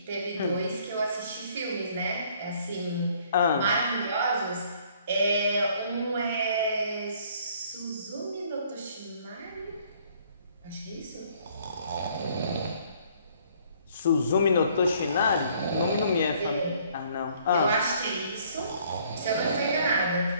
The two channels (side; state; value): both; inverted; correlation -0.61